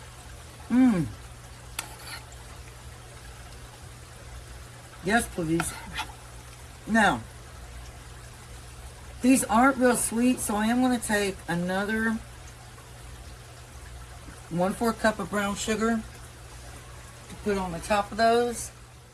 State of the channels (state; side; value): identical; both; correlation 1.00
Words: Mmm. Yes, please. Now, these aren't real sweet, so I am going to take another 1/4 cup of brown sugar to put on the top of those.